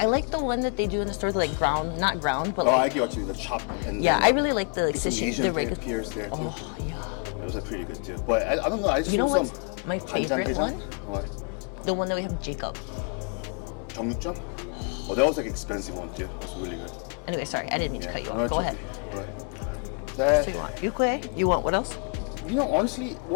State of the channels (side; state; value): right; quieter; 39.0 dB